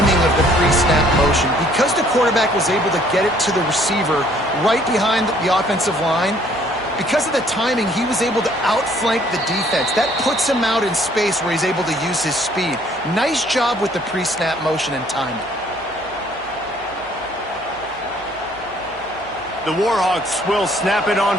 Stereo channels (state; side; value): noise; right; hum, 25 dB below the sound